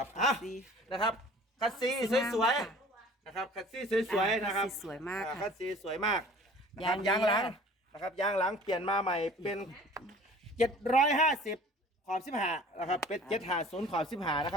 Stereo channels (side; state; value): both; normal; correlation 0.47